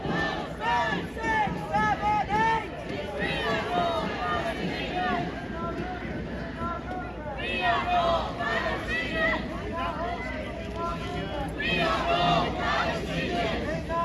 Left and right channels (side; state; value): both; identical; correlation 1.00